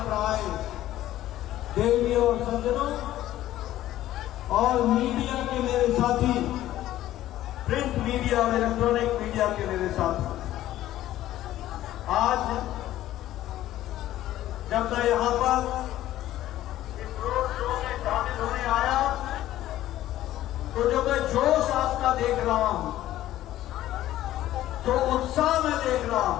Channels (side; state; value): right; quieter; 13.9 dB